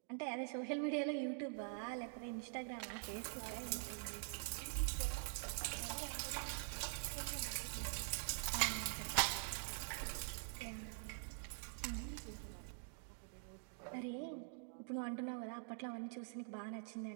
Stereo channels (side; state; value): left; silent; digital silence